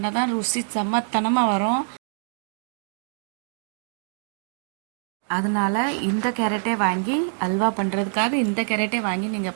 தான் ருசி செம்மத்தனமாக வரும். அதனால் இந்த கேரட்டே வாங்கி அல்வா பண்ணுறதுக்காக இந்த கேரட்டே வாங்கி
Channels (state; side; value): silent; left; digital silence